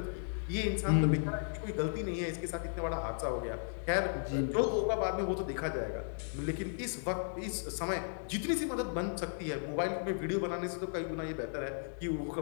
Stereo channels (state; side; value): silent; right; digital silence